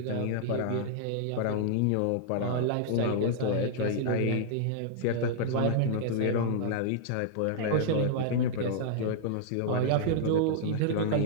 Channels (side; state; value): both; different; correlation -0.01